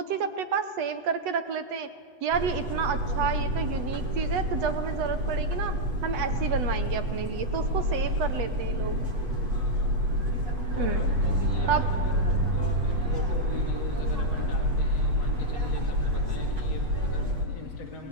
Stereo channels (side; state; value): left; late; 8.1 ms